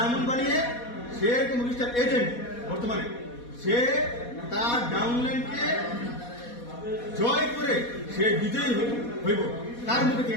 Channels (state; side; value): late; right; 4.2 ms